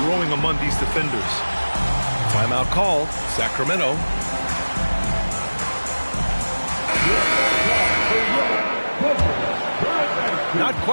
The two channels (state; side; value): inverted; both; correlation -1.00